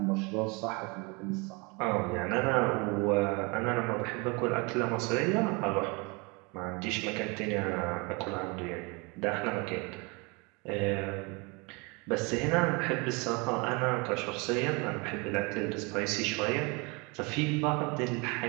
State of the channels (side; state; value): left; quieter; 28.9 dB